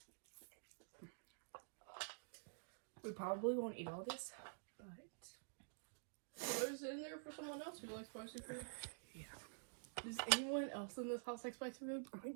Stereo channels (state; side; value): silent; left; digital silence